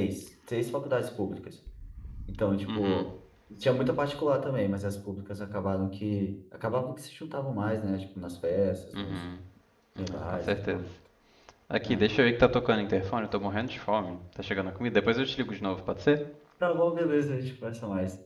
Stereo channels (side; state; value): both; identical; correlation 1.00